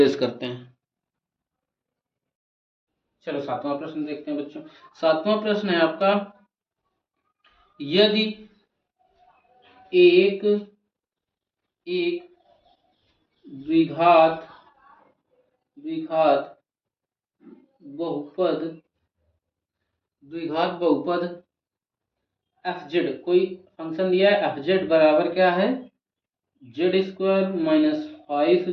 करते हैं। चलो सातवां प्रश्न देखते हैं बच्चों। सातवां प्रश्न है आपका, यदि एक द्विघात द्विघात बहुपद एफ जेड, कोई फंक्शन दिया है एफ जेड बराबर क्या है, Z square minus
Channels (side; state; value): both; identical; correlation 1.00